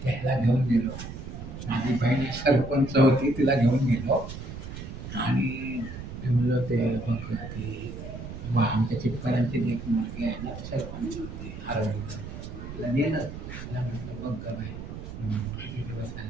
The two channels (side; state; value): right; noise; rumble, 10 dB below the sound